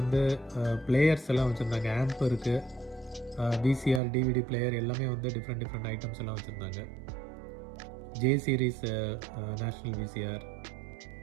பிளேயர்ஸ் எல்லாம் வச்சுருந்தாங்க. ஆம்ப் இருக்குது, VCR, DVD பிளேயர் எல்லாமே வந்து டிஃப்ரெண்ட் ஐட்டம்ஸ் எல்லாம் வச்சுருந்தாங்க. J series national VCR,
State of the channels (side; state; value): left; drops out; at 4.0 s